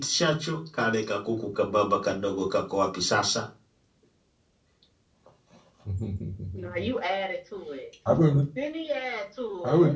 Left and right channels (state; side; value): identical; both; correlation 1.00